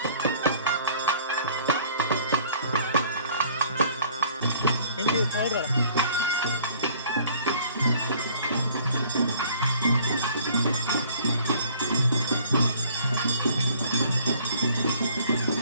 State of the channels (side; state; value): both; inverted; correlation -0.55